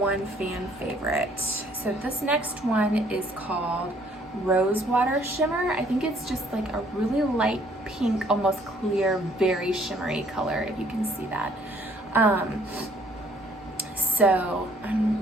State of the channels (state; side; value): normal; both; correlation 0.62